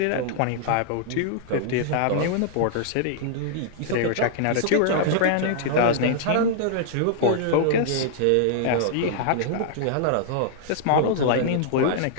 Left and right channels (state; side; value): different; both; correlation -0.01